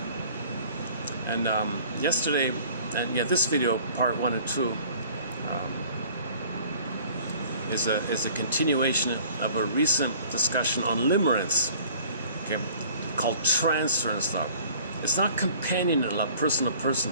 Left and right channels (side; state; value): both; inverted; correlation -0.51